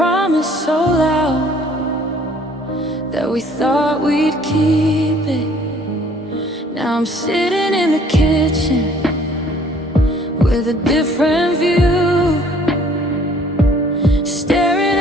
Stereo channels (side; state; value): both; normal; correlation 0.57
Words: so loud that we thought we'd keep it. Now I'm sitting in the kitchen with a different view, staring